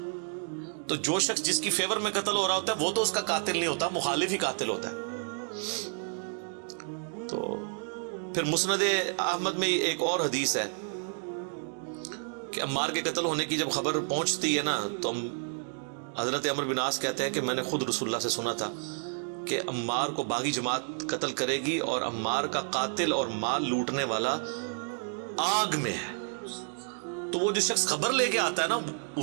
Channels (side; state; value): left; silent; 58 dB below the other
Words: تو جو شخص جس کی فیور میں قتل ہو رہا ہوتا ہے وہ تو اس کا قاتل نہیں ہوتا، مخالف ہی قاتل ہوتا ہے. تو پھر مسند احمد میں ایک اور حدیث ہے کہ عمار کے قتل ہونے کی جب خبر پہنچتی ہے نا، تو حضرت عمر بن عاص کہتے ہیں کہ میں نے خود رسول اللہ سے سنا تھا کہ عمار کو باغی جماعت قتل کرے گی، اور عمار کا قاتل اور مال لوٹنے والا آگ میں ہے. تو وہ جو شخص خبر لے کے آتا ہے نا،